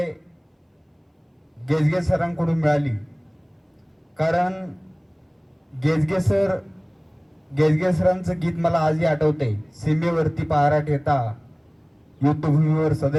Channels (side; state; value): both; identical; correlation 1.00